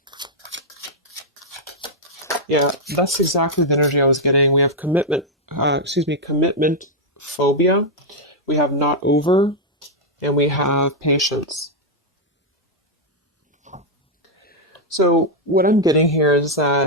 Yeah, that's exactly the energy I was getting. We have commitment phobia. We have not over, and we have patience. So what I'm getting here is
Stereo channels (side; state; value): both; normal; correlation -0.02